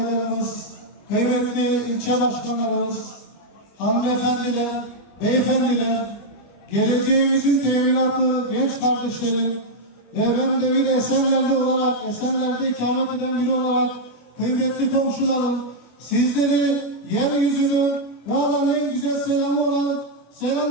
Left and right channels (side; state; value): right; late; 25 ms